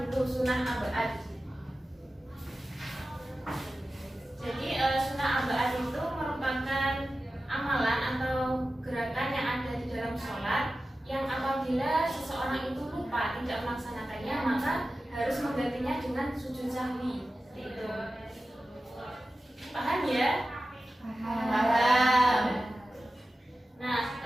dulu, sunnah abad. Jadi sunnah abad itu merupakan amalan atau gerakan yang ada di dalam sholat yang apabila seseorang itu lupa tidak melaksanakannya, maka harus menggantinya dengan sujud sahwi. Seperti itu. Paham ya? Paham. Nah,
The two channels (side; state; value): both; normal; correlation 0.94